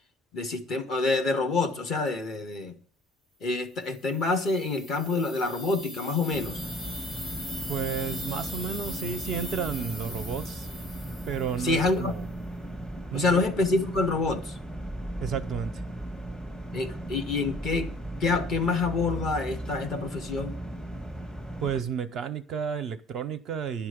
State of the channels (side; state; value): both; normal; correlation 0.52